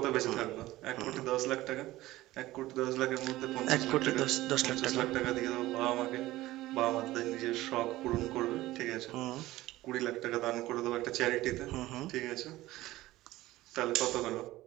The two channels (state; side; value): quieter; left; 17.0 dB